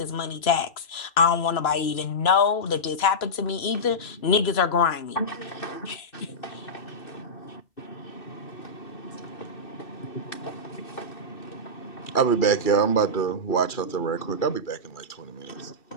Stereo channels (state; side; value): late; right; 3.0 ms